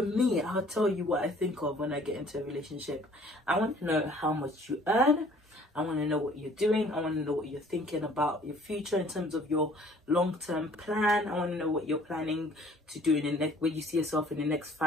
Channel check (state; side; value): normal; both; correlation 0.55